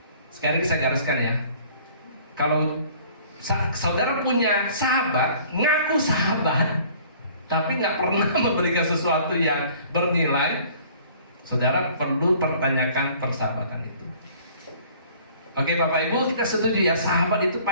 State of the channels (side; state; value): both; inverted; correlation -0.53